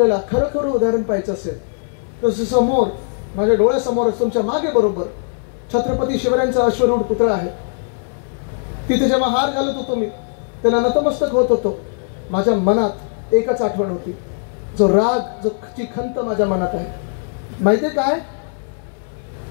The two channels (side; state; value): right; silent; 61 dB below the other